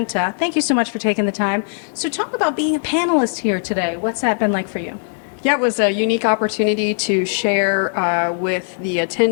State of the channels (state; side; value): silent; right; digital silence